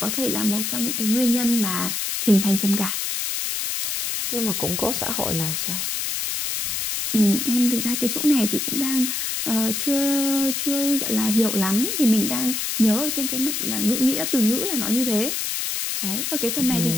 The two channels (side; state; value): left; noise; hiss, 1 dB below the sound